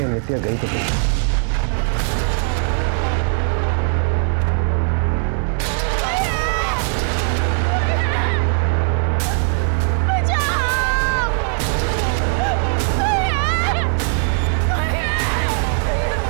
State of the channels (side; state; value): left; silent; 61 dB below the other